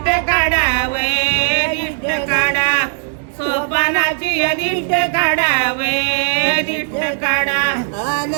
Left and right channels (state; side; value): silent; left; 68 dB below the other